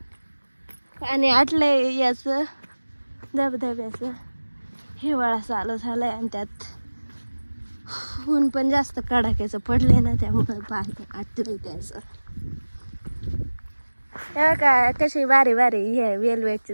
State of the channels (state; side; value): inverted; both; correlation -1.00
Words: आणि आटलंय याच धबधब्याचं. हिवाळा चालू झालाय आणि त्यात ऊन पण जास्त कडाक्याचं पडले ना, त्यामुळे पाणी आटलंय त्याचं. का कशी बारी बारी हे